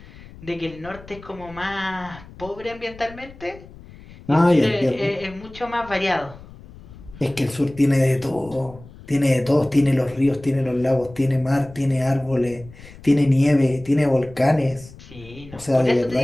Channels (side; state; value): left; noise; rumble, 19 dB below the sound